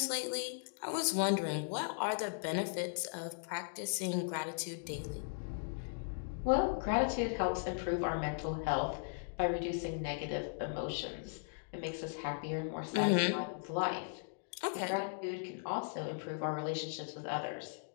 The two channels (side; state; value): right; silent; digital silence